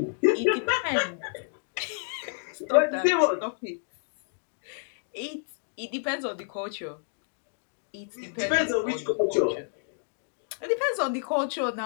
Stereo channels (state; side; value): silent; right; digital silence